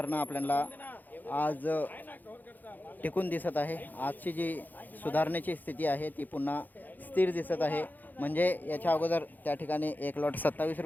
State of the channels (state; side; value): late; right; 0.085 ms